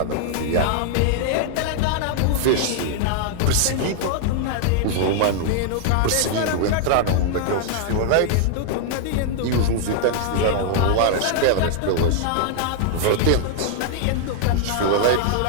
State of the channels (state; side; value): different; both; correlation 0.00